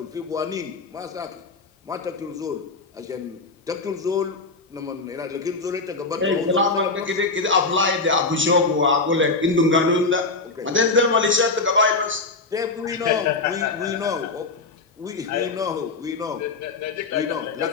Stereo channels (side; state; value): right; quieter; 3.7 dB